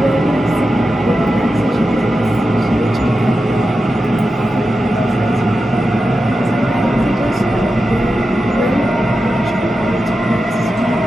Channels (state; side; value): normal; both; correlation 0.91